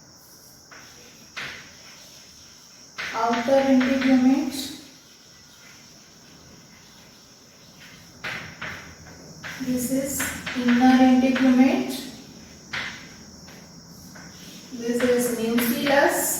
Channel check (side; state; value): both; identical; correlation 1.00